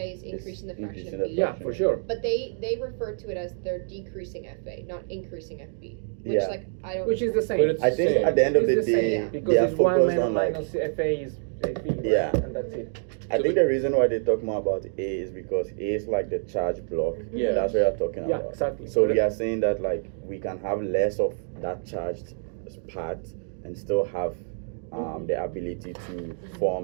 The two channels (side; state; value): left; silent; 60 dB below the other